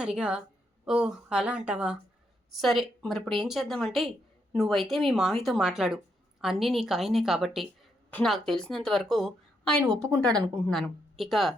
ఓ అలా అంటావా, సరే మరి ఇప్పుడు ఏం చేద్దామంటే నువ్వైతే మీ మామయ్యతో మాట్లాడు, అన్నీ నీకు ఆయనే కాబట్టి నాకు తెలిసినంత వరకు ఆయన ఒప్పుకుంటాడు అనుకుంటున్నాను, ఇక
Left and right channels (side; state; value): both; normal; correlation 0.78